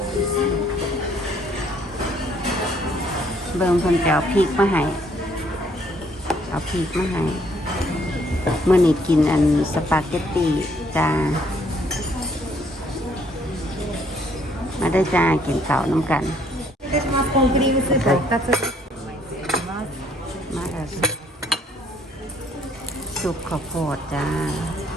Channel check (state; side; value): normal; both; correlation 0.65